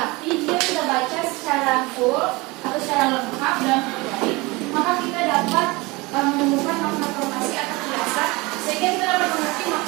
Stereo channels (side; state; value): left; quieter; 23.8 dB